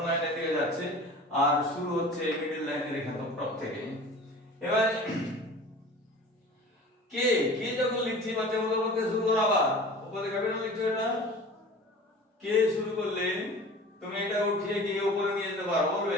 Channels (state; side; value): normal; both; correlation 0.41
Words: লাইনের দিকে যাচ্ছে, আর শুরু হচ্ছে মিডল লাইনের এখানে টপ থেকে। এবার কে কে যখন লিখছি বাচ্চা বলতে শুরু করো, আবার উপরে ক্যাপিটাল লিখছো, এটা কে শুরু করলে তুমি এটা উঠিয়ে গিয়ে উপরে নিয়ে যেতে পারো, বলবে